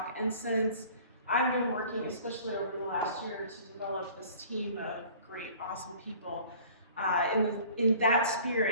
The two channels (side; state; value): both; inverted; correlation -0.49